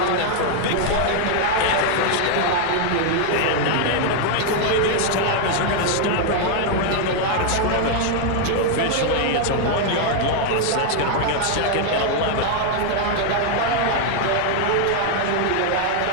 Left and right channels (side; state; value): both; different; correlation 0.00